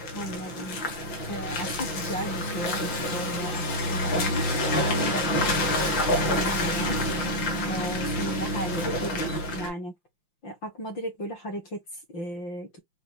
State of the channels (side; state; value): right; late; 5.8 ms